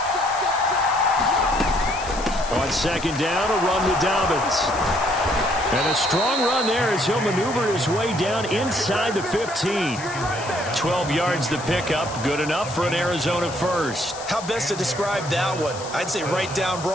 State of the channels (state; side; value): noise; left; hiss, 13 dB below the sound